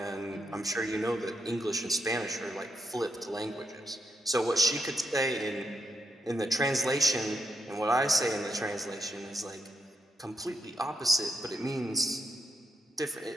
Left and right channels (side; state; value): both; normal; correlation 0.82